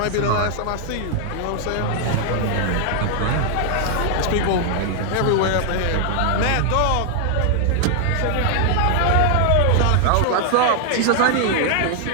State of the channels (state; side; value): different; both; correlation 0.00